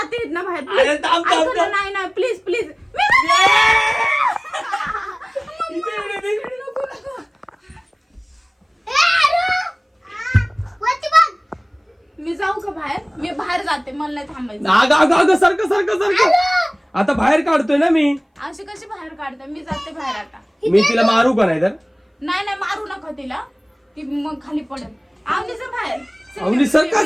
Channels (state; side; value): identical; both; correlation 1.00